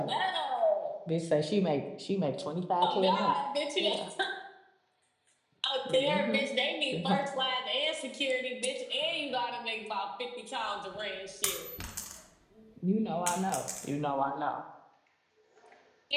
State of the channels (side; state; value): both; identical; correlation 1.00